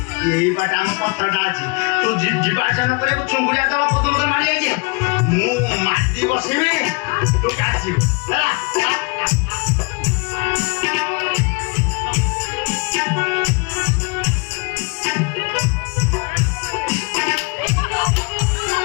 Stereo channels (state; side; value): quieter; right; 30.3 dB